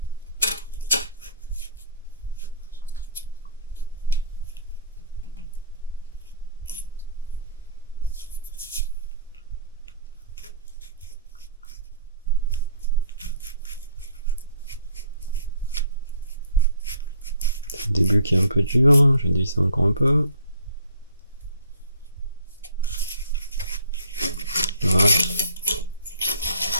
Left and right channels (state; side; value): inverted; both; correlation -0.53